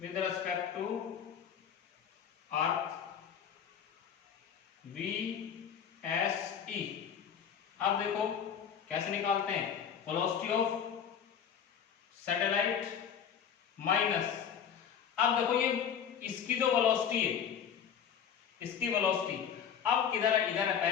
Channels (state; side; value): quieter; right; 8.0 dB